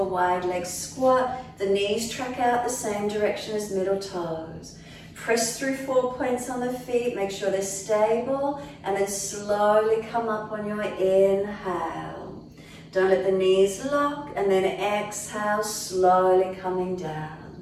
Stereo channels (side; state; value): both; identical; correlation 1.00